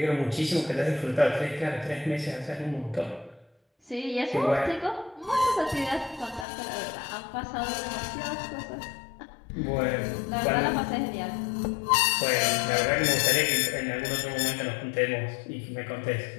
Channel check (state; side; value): drops out; right; at 6.5 s